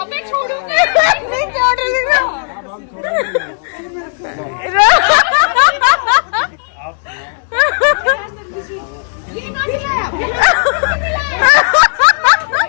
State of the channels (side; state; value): right; silent; 71 dB below the other